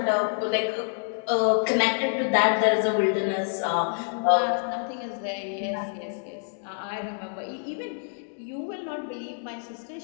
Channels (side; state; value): right; silent; digital silence